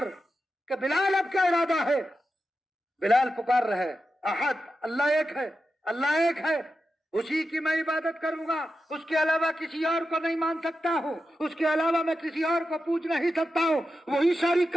کہ بلال اب کیا ارادہ ہے؟ بلال پکار رہے احد، اللہ ایک ہے، اللہ ایک ہے، اسی کی میں عبادت کروں گا، اس کے علاوہ کسی اور کو نہیں مان سکتا ہوں، اس کے علاوہ میں کسی اور کو پوچھ نہیں سکتا ہوں۔ وہی ساری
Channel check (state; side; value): normal; both; correlation 0.90